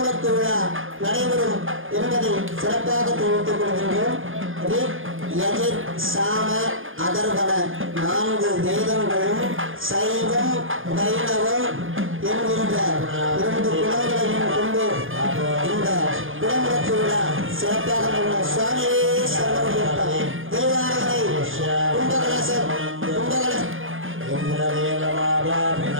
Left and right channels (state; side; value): late; left; 0.59 ms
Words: விழா நடைபெறும் என்பதை சிறப்பாக தெரிவித்துக் கொள்கின்றோம். சாம அதர்வன 4 வேதங்களும் சைவம் வைணவம் என்கின்ற 2 குலங்களையும் கொண்டு இந்த குடமுழுக்கு விழா சிறப்பாக சுவாமியே சரணம் தேவாரங்களை கும்பகலசம்